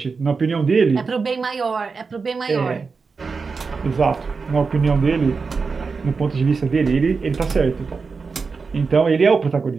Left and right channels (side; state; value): left; quieter; 4.8 dB